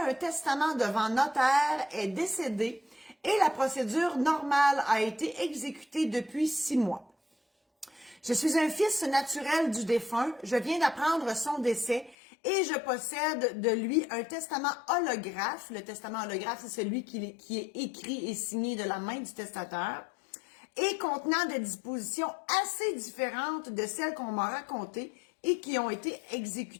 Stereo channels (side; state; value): right; drops out; at 12.2 s